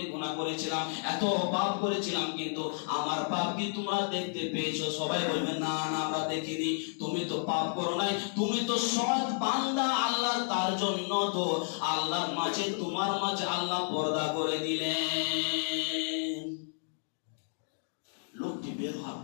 গুনাহ করেছিলাম, এত পাপ করেছিলাম, কিন্তু আমার পাপ কি তোমরা দেখতে পেয়েছো? সবাই বলবে, না না আমরা দেখিনি, তুমি তো পাপ করো নাই, তুমি তো সৎ বান্দা আল্লাহ, তার জন্য তো আল্লাহর মাঝে তোমার মাঝে আল্লাহ পর্দা করে দিলেন। লোকটি বের হওয়ার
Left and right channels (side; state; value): right; silent; digital silence